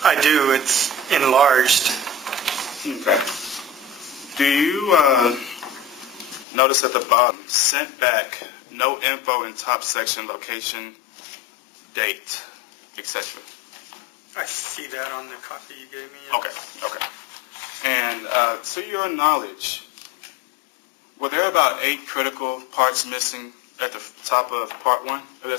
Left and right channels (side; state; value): right; drops out; at 6.5 s